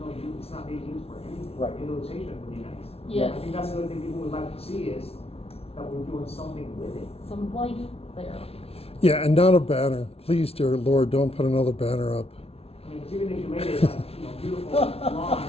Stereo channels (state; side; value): late; right; 0.29 ms